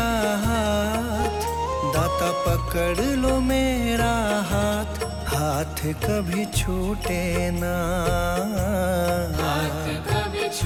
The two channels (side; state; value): both; identical; correlation 1.00